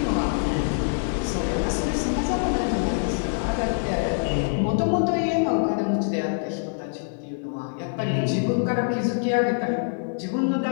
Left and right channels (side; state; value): right; silent; digital silence